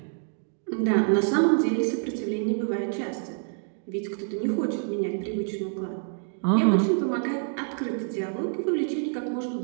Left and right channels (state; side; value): silent; left; 60 dB below the other